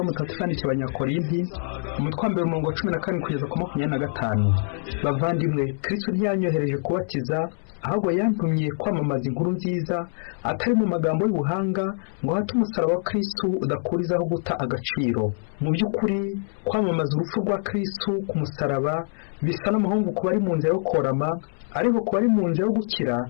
Mutagatifu yandikiye Abanyakorinti, umutwe wa 14 kugeza ku 25. Bavandimwe, Kristo ntiyanyohereje kubatiza, ahubwo yantumye kwamamaza inkuru nziza, atari mu magambo y'ubuhanga, ngo hate umusaraba wa Kristo udakurizaho guta agaciro. Mu by'ukuri kwamamaza urupfu rwa Kristo ku musaraba bisa n'amahungu ku bari mu nzira yo korama, ariko ku bari mu nzira yo gukira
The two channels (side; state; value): right; silent; 62 dB below the other